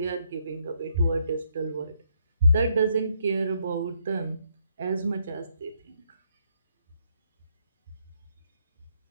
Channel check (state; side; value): inverted; both; correlation -0.74